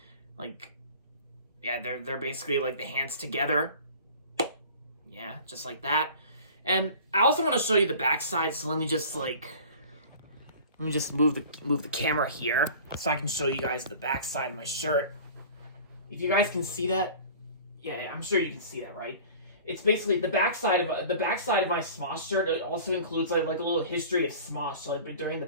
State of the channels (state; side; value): inverted; both; correlation -0.43